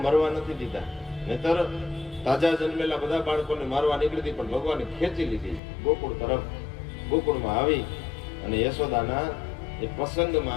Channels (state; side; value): drops out; right; at 5.6 s